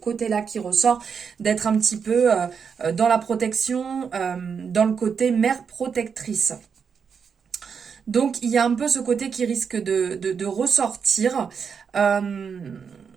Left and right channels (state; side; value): quieter; left; 6.4 dB